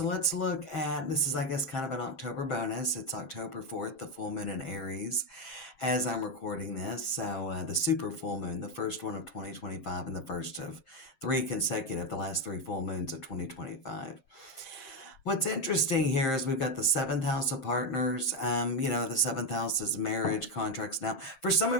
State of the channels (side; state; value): right; late; 7.5 ms